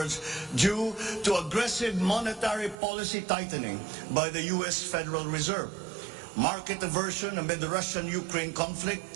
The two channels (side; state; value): left; drops out; at 2.8 s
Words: due to aggressive monetary policy tightening by the US Federal Reserve, market aversion amid the Russian-Ukraine conflict,